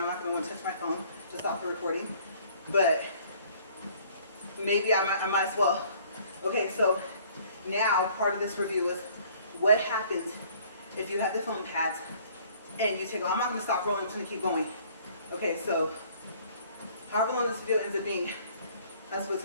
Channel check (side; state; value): both; inverted; correlation -0.56